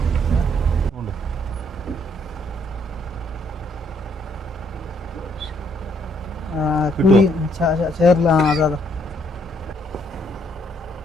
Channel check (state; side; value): normal; both; correlation 0.69